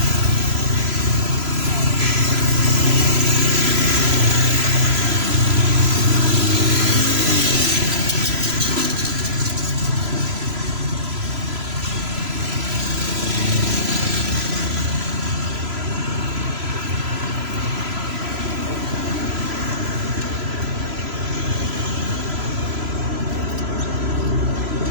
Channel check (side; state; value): left; late; 3.0 ms